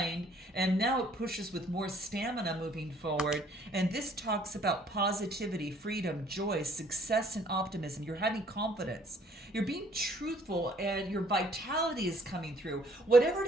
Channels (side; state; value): both; normal; correlation 0.61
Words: and now it pushes with more stamina moving forward. And this talks about positivity, freedom, joy, success, and optimism. You're having confidence. You're being truthful, and your vitality is coming through. Whatever